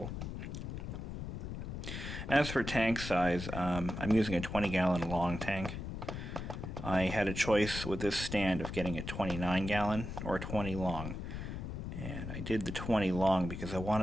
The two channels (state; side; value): noise; left; rumble, 6 dB below the sound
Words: As for tank size, I'm using a 20-gallon long tank. I had a choice with this stand of getting a 29-gallon or a 20 long. And I did the 20 long because I